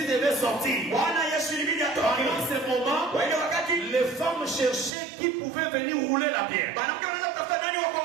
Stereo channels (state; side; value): drops out; left; at 4.9 s